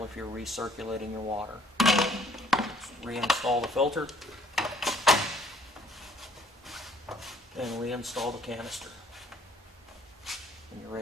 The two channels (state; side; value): normal; both; correlation 0.60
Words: if you're recirculating your water. Just reinstall the filter and reinstall the canister, and you're